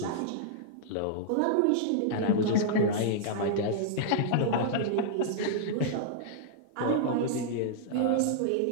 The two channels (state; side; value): different; both; correlation -0.02